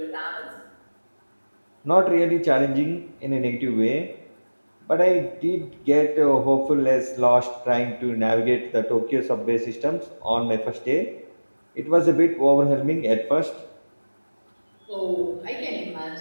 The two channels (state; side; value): inverted; both; correlation -1.00